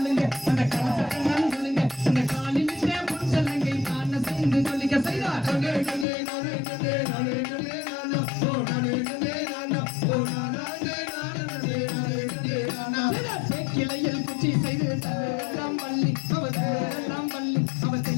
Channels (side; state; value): right; drops out; at 6.1 s